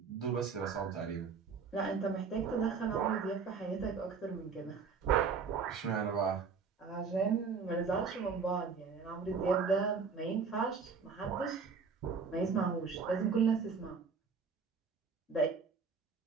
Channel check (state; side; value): quieter; left; 5.5 dB